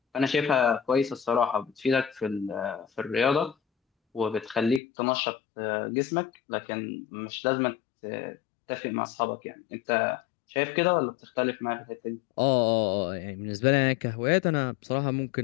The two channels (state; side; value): drops out; right; at 4.8 s